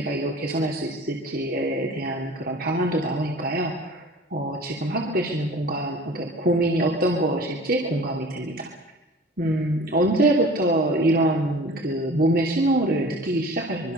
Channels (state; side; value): normal; both; correlation 0.43